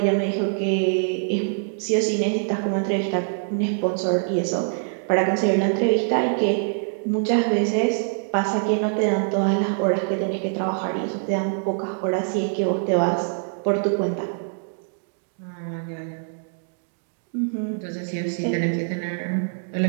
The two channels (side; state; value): left; silent; digital silence